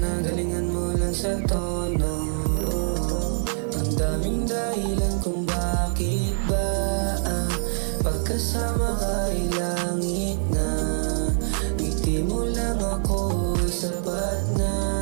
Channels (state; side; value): silent; left; digital silence